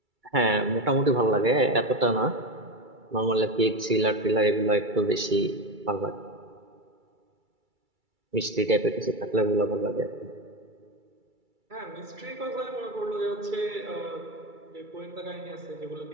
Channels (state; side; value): late; left; 2.3 ms